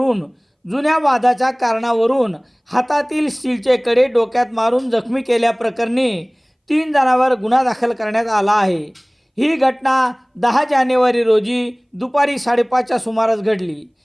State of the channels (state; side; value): identical; both; correlation 1.00